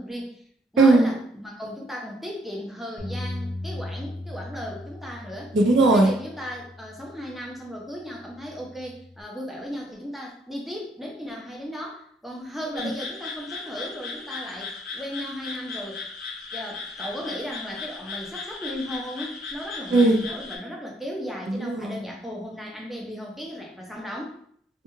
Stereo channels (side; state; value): both; normal; correlation 0.70